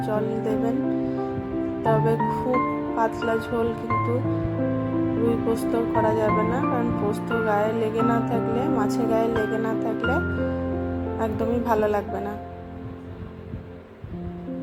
জল দেবেন। তবে খুব পাতলা ঝোল কিন্তু রুই পোস্ত করা যাবে না, কারণ পোস্ত গায়ে লেগে না থাকলে, মাছে গায়ে লেগে না থাকলে একদমই ভালো লাগবে না।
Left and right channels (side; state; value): both; identical; correlation 1.00